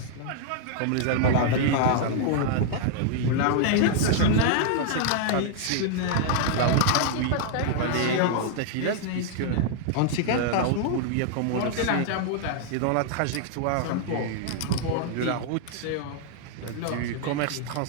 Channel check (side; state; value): both; different; correlation -0.01